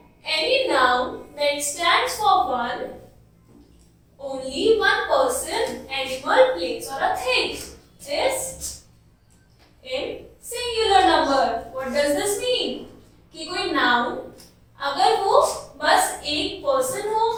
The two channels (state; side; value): identical; both; correlation 1.00